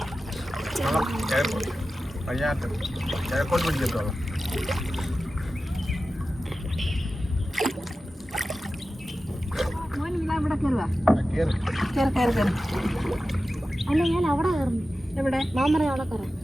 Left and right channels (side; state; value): both; normal; correlation 0.94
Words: കിഴക്കോട്ട് പിടിക്കട്ടോ. ഇവിടെ കയറുക, കയറി കയറി കയറി. അല്ല ഞാൻ അവിടെ കയറുന്നു. എവിടെ? മാമറ അവിടെ കയറാം.